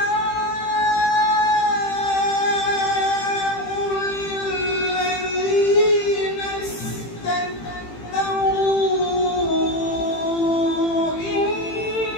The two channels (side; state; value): right; late; 18 ms